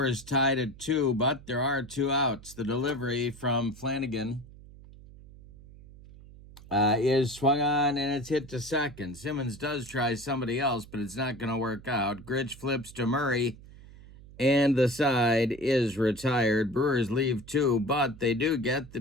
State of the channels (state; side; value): noise; right; hum, 19 dB below the sound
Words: is tied at 2, but there are 2 outs. The delivery from Flanagan is swung on, and it's hit to second. Simmons does try somebody else, but it's not going to work out. Grich flips to Murray, and the side is retired. Brewers leave 2, but they do get the